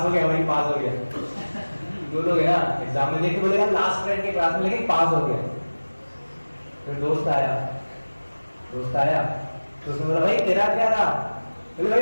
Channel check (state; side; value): inverted; both; correlation -1.00